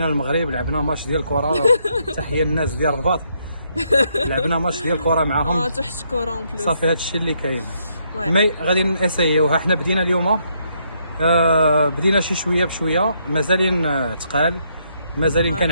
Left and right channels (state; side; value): inverted; both; correlation -0.74